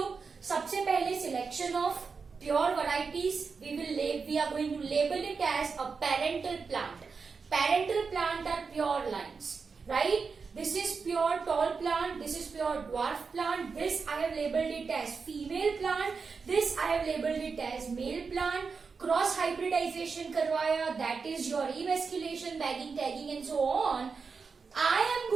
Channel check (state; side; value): quieter; left; 5.1 dB